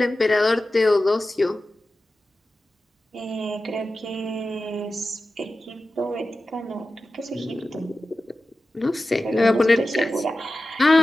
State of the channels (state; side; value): normal; both; correlation 0.94